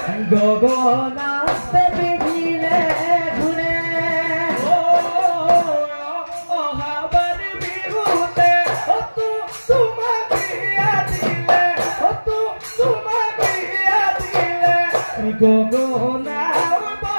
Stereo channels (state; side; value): inverted; both; correlation -1.00